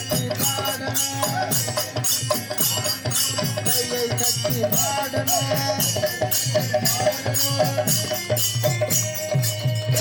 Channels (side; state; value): both; identical; correlation 1.00